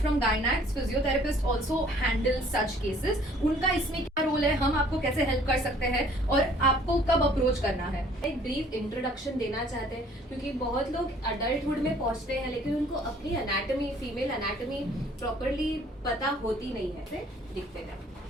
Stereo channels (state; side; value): normal; both; correlation 0.56